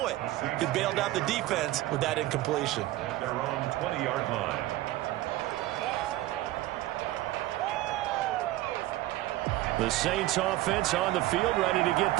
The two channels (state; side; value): quieter; left; 16.5 dB